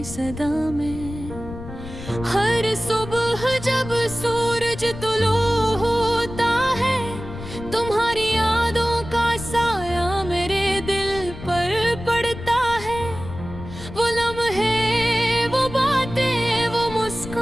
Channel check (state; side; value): noise; left; rumble, 12 dB below the sound